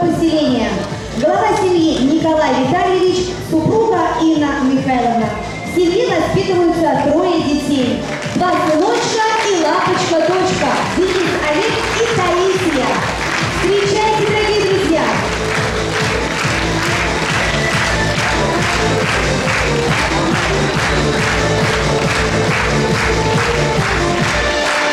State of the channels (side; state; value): both; identical; correlation 1.00